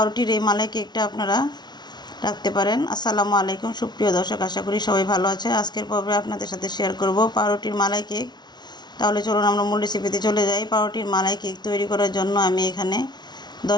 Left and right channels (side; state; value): right; late; 0.20 ms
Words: এই মালাই কেকটা আপনারা রাখতে পারেন। আসসালামু আলাইকুম সুপ্রিয় দর্শক, আশা করি সবাই ভালো আছে। আজকের পর্বে আপনাদের সাথে শেয়ার করব পাউরুটির মালাই কেক। তাহলে চলুন আমরা মূল রেসিপিতে চলে যাই। পাউরুটির মালাই কেক তৈরি করার জন্য আমি এখানে